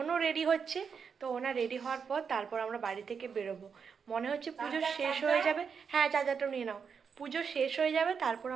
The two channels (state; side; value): quieter; left; 6.3 dB